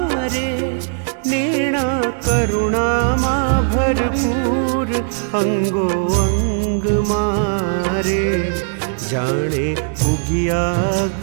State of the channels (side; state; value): left; silent; digital silence